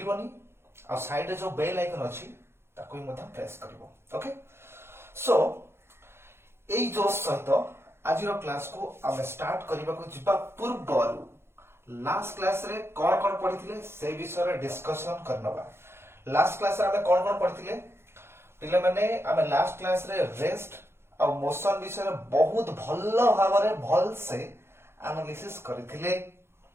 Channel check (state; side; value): late; left; 0.12 ms